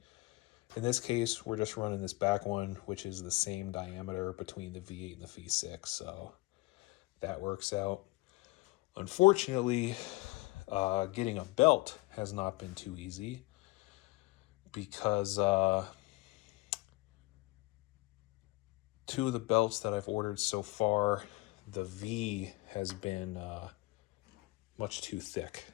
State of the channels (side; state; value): right; quieter; 22.3 dB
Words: in this case, we're just running this back one, which is the same diameter between the V8 and the V6. So that works out. Unfortunately, getting a belt has not been too easy, because two of the belts that I've ordered so far, the V has been much too thick.